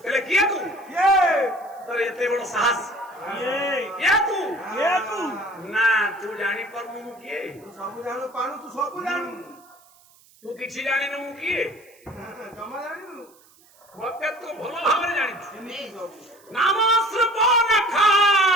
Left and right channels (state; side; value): noise; right; hiss, 29 dB below the sound